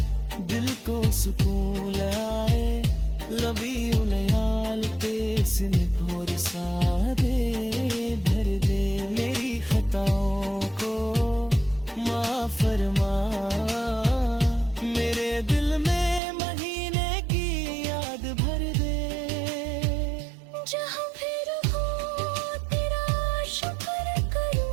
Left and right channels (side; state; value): left; drops out; at 16.2 s